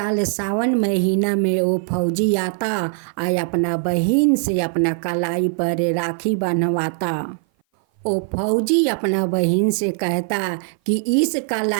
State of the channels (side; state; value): left; silent; 56 dB below the other